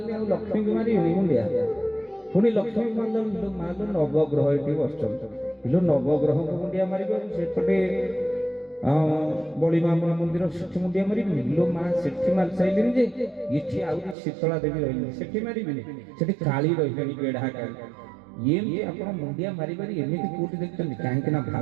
आ लक्ष्मी के मारी मुंडिया पुनी लक्ष्मी मारले मारले नवग्रह एठी बसचन इलो नवग्रह को मुंडिया मारी सेपटे बड़ी माँ मंदिर सेठी मुंडिया मारी लो माँ सेठी मार साइलिन जे इठी आउरी शीतला देवी रहिली सेठी मारिबिनी सेठी काली रहिली बेढा काली ये आपण मुंडिया मारी मारी एमिति कोटी देखछन काहे कि ना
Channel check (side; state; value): left; drops out; at 14.2 s